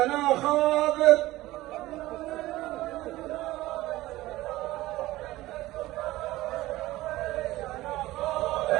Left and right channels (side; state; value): left; quieter; 17.4 dB